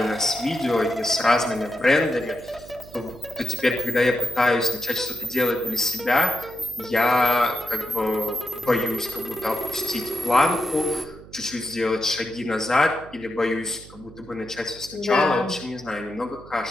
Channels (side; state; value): right; noise; hum, 19 dB below the sound